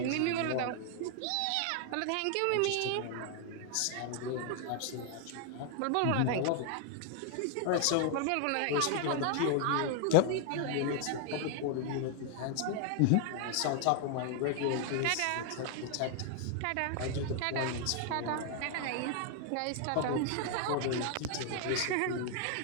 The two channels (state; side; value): different; both; correlation 0.00